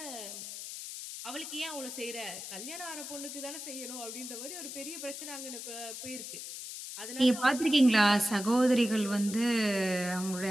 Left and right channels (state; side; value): noise; left; hiss, 9 dB below the sound